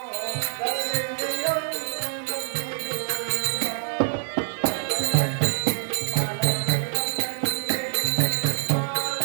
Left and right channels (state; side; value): silent; left; digital silence